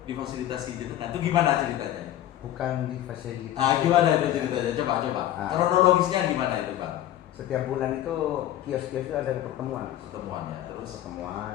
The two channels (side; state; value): right; quieter; 12.8 dB